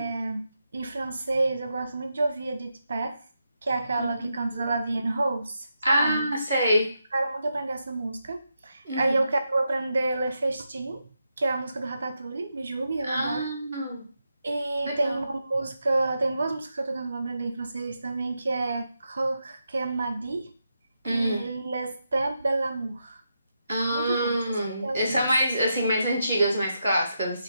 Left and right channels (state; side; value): inverted; both; correlation -0.85